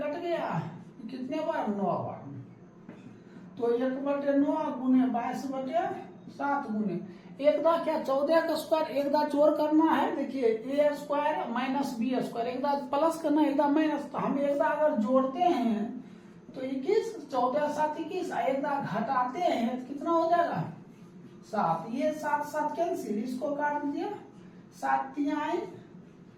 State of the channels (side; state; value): both; identical; correlation 1.00